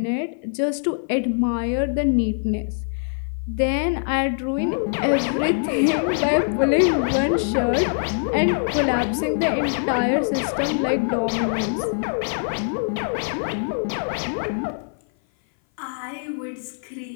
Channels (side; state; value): right; silent; 57 dB below the other